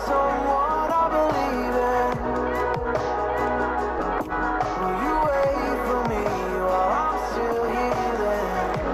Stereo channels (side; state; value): both; identical; correlation 1.00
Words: someone I believe in. Will you wait for me while I'm still healing?